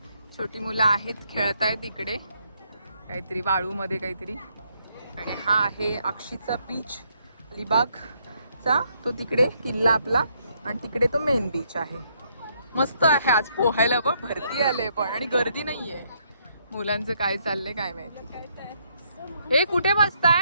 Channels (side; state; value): both; inverted; correlation -0.73